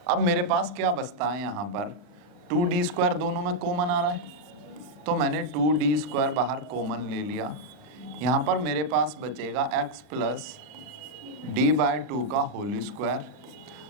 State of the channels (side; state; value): left; late; 39 ms